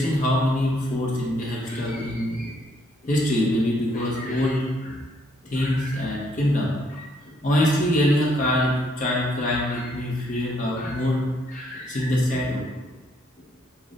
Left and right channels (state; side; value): normal; both; correlation 0.70